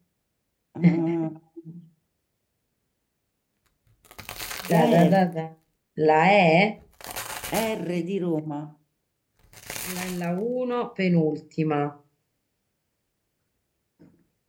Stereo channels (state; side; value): identical; both; correlation 1.00